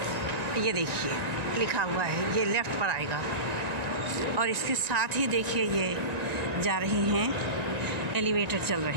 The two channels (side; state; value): left; late; 1.9 ms